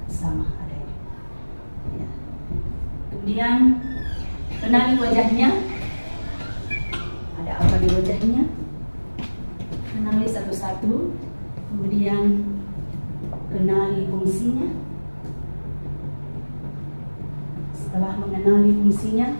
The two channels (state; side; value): inverted; both; correlation -1.00